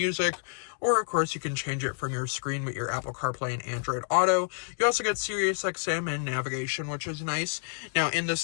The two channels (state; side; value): silent; right; digital silence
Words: or of course you can change it from your screen with your Apple CarPlay and Android Auto. You also get Sirius XM and navigation, which is nice. Now, in